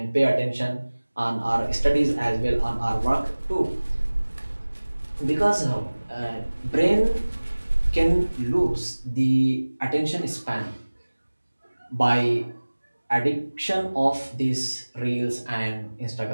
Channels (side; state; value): both; inverted; correlation -1.00